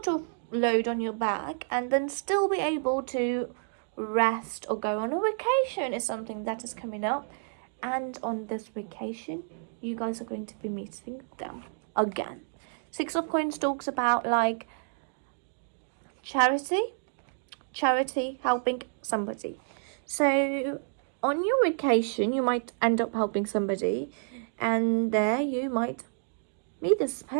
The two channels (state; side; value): silent; left; digital silence